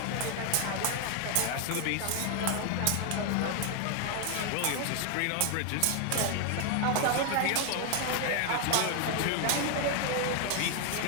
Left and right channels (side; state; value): both; different; correlation 0.00